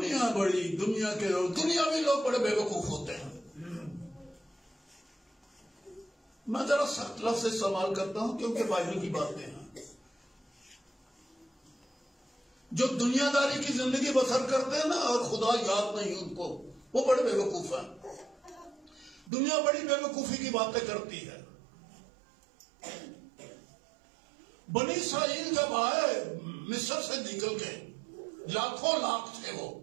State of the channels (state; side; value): drops out; left; at 19.3 s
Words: کے لوگ، دنیاوی لوگ بڑے بے وقوف ہوتے ہیں. میں ذرا سخت لفظ استعمال کرتا ہوں کیونکہ بائبل کی باتیں ہیں. جو دنیا داری کی زندگی بسر کرتے ہیں نا اور خدا یاد نہیں ان کو، وہ بڑے بے وقوف ہیں. دنیا بڑی بے وقوفی کی باتیں کرتی ہے. بنی اسرائیل جب آئے مصر سے نکل کے، لاکھوں لاکھ تھے وہ.